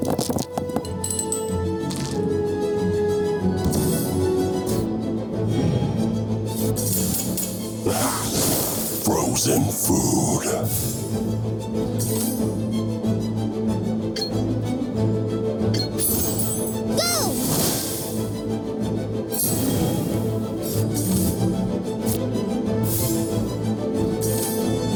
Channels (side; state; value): both; identical; correlation 1.00